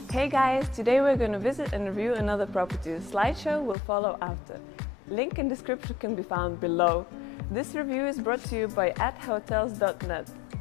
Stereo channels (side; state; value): right; drops out; at 3.8 s